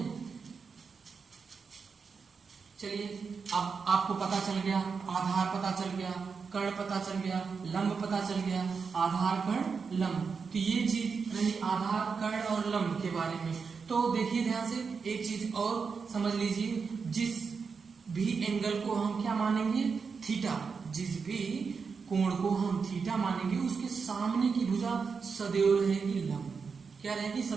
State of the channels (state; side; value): quieter; left; 5.4 dB